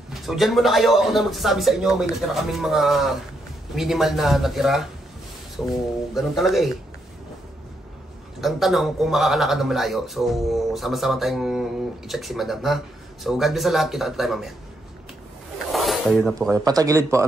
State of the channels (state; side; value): normal; both; correlation 0.78